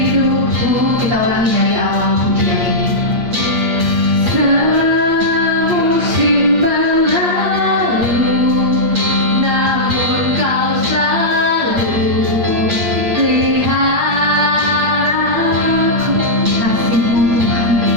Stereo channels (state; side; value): late; left; 8.6 ms